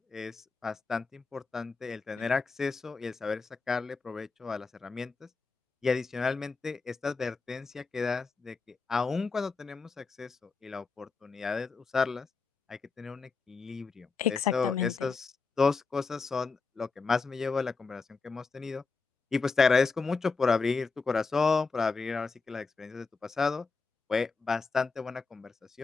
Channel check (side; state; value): right; quieter; 4.5 dB